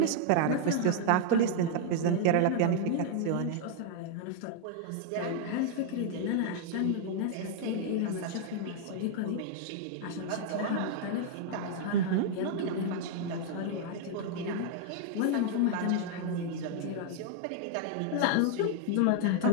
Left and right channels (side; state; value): both; different; correlation 0.00